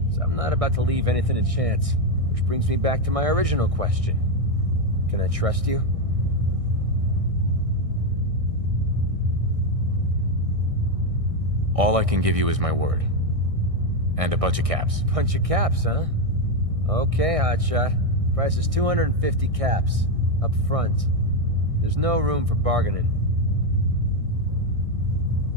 So I'm not about to leave anything to chance. Which brings me back to my original question. Can I trust you? All I can give you is my word. And a bunch of caps. Bunch of caps, huh? Okay, hotshot. Price is 250 caps. Up front. There's no room for bargaining.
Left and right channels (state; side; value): late; left; 1.6 ms